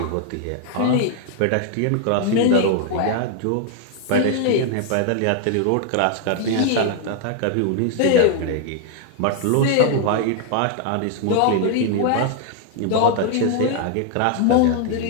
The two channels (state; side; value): different; both; correlation 0.00